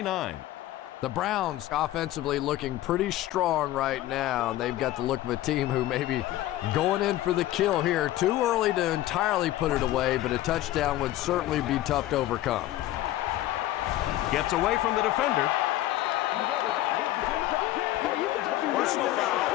The Browns offensively looking pretty strong right now. They've got the look of a team who may be going in for the kill here. Too early to entirely put it away, but a touchdown would certainly be tough to overcome. Gets away from the defender. Personal foul,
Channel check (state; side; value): quieter; right; 14.9 dB